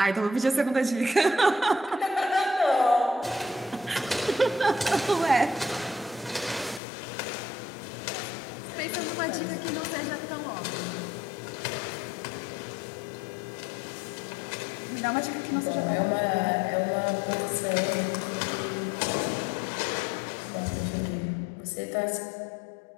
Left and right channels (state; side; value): drops out; right; at 6.8 s